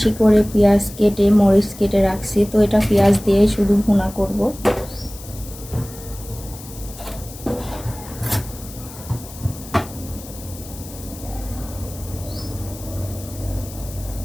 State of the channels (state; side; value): noise; left; hiss, 16 dB below the sound